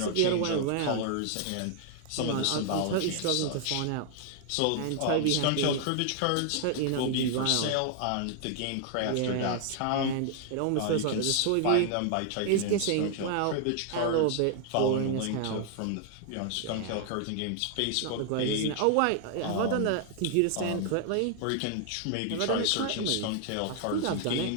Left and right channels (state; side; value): different; both; correlation 0.00